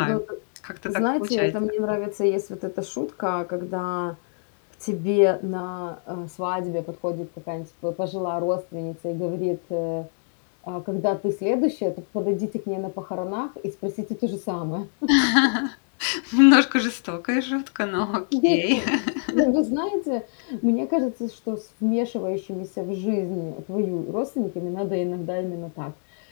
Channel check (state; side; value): silent; right; digital silence